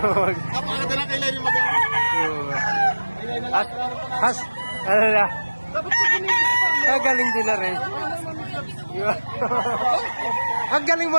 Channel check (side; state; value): both; inverted; correlation -1.00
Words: na kailan yung mag-awa. Has, ano na? Galing din na rin. Ang galing